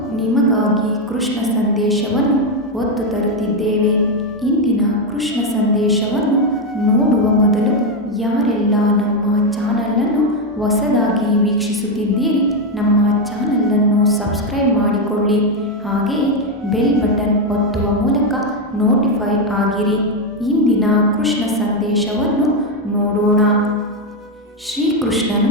ನಿಮಗಾಗಿ ಕೃಷ್ಣ ಸಂದೇಶವನ್ನು ಹೊತ್ತು ತರುತ್ತಿದ್ದೇವೆ. ಇಂದಿನ ಕೃಷ್ಣ ಸಂದೇಶವನ್ನು ನೋಡುವ ಮೊದಲು ಯಾರೆಲ್ಲ ನಮ್ಮ ಚಾನಲನ್ನು ಹೊಸದಾಗಿ ವೀಕ್ಷಿಸುತ್ತಿದ್ದೀರಿ, ನಮ್ಮ ಚಾನಲನ್ನು ಸಬ್ಸ್ಕ್ರೈಬ್ ಮಾಡಿಕೊಳ್ಳಿ. ಹಾಗೆಯೇ ಬೆಲ್ ಬಟನ್ ಒತ್ತುವ ಮೂಲಕ ನೋಟಿಫೈ ಆಗಿರಿ. ಇಂದಿನ ಕೃಷ್ಣ ಸಂದೇಶವನ್ನು ನೋಡೋಣ. ಶ್ರೀಕೃಷ್ಣನು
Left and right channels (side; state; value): both; normal; correlation 0.06